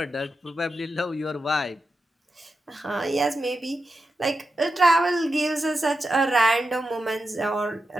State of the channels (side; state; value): both; normal; correlation 0.89